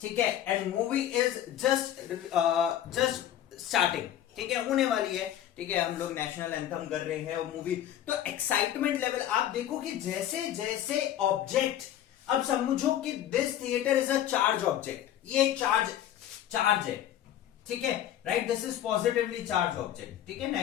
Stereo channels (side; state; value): right; quieter; 11.4 dB